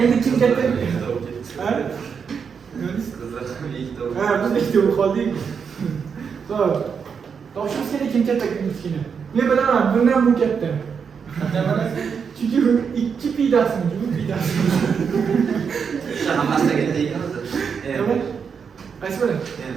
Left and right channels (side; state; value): left; quieter; 6.4 dB